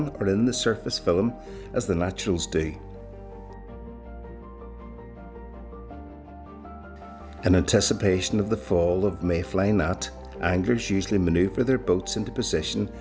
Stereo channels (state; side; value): identical; both; correlation 1.00